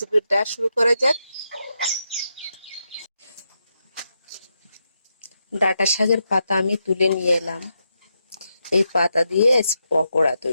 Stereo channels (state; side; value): inverted; both; correlation -0.84